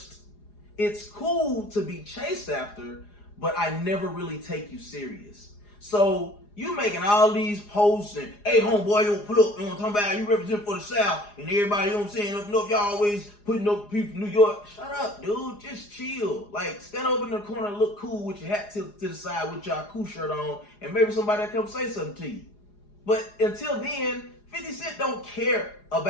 It's cool to be chased after, but I never really take you serious. So you making all these posts and, hey homeboy, you put up, you know what I'm talking about, you represent for the South, and everybody, you know what I'm saying, if y'all always putting up people from New York. Shut up, dude, just chill. Like, stand over in the corner and look cool with your hat tilted to the side with your cool shirt on, and maybe somebody will come say something to you. But until then, 50 Cent don't care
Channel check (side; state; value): right; late; 4.9 ms